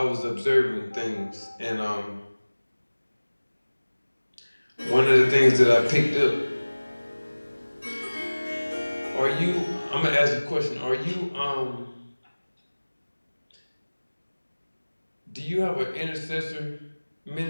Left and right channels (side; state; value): both; inverted; correlation -1.00